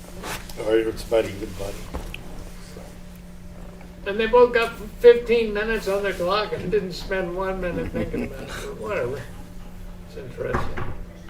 Or it's about even buddy. And they both got 15 minutes on their clock and didn't spend 1 minute thinking about it. Or whatever. It's interesting.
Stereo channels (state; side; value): identical; both; correlation 1.00